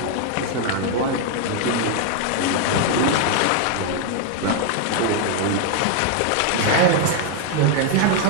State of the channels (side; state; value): both; different; correlation 0.00